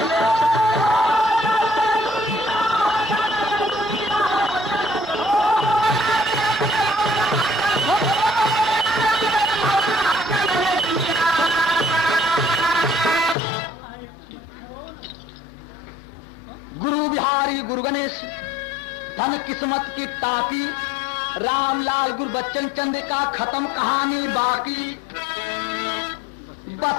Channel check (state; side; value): drops out; right; at 13.4 s